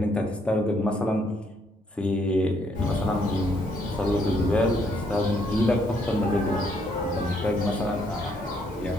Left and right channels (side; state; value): both; normal; correlation 0.70